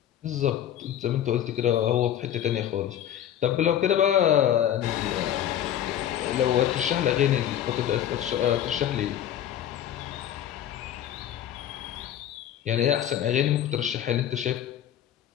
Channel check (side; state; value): right; quieter; 10.7 dB